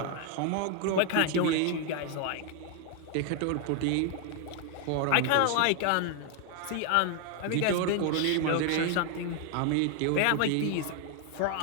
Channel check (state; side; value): different; both; correlation 0.00